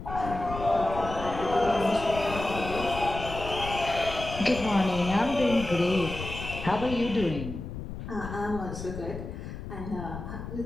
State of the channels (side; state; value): left; noise; rumble, 9 dB below the sound